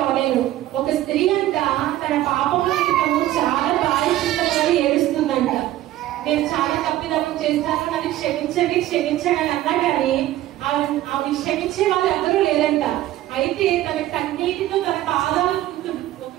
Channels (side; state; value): left; quieter; 14.6 dB